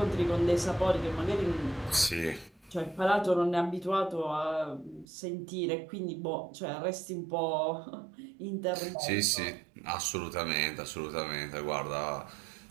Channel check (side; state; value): left; drops out; at 5.1 s